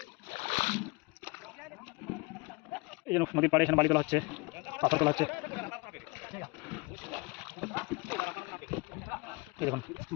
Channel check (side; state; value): right; quieter; 25.5 dB